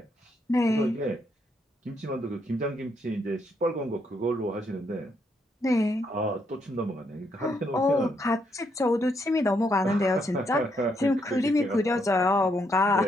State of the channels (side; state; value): both; normal; correlation 0.75